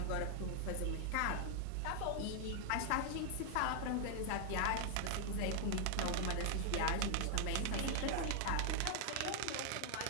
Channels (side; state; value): both; different; correlation 0.00